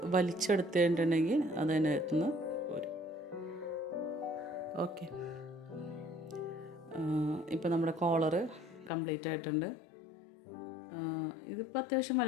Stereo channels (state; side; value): drops out; right; at 8.9 s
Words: വലിച്ചെടുത്തിട്ടുണ്ടെങ്കിൽ അതിനകത്തുനിന്ന് പോരും. ഓക്കെ, ഇപ്പോൾ നമ്മുടെ കോളറ് കംപ്ലീറ്റ് ആയിട്ടുണ്ട്. ഇതിപ്പോൾ അത്യാവശ്യം